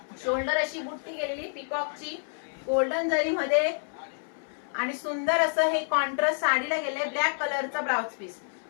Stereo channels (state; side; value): silent; right; 59 dB below the other